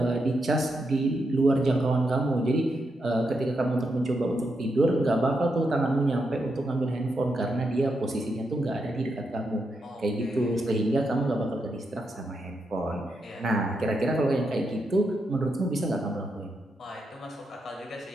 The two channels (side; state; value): both; normal; correlation 0.83